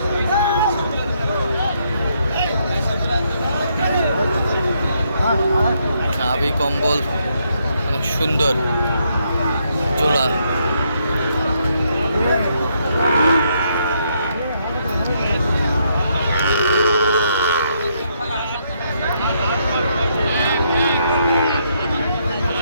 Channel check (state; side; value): inverted; both; correlation -0.75